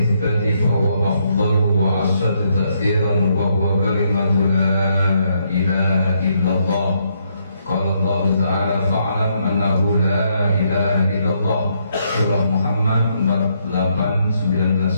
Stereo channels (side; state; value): both; inverted; correlation -0.74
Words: fa huwa afdalu wa ashaddu ta'thiran wa huwa kalimatu la ilaha illallah. Qala Allah Ta'ala fa'lam annahu la ilaha illallah. Surah Muhammad